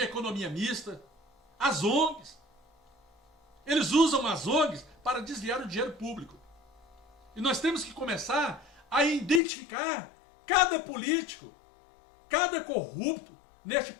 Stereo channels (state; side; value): drops out; right; at 9.4 s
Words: economia mista, as ONGs. Eles usam as ONGs para desviar o dinheiro público. E nós temos que começar a identificar cada político, cada corrupto neste